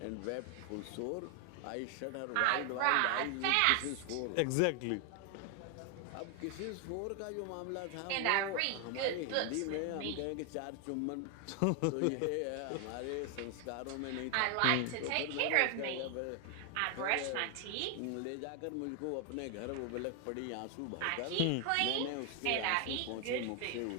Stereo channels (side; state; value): both; different; correlation 0.00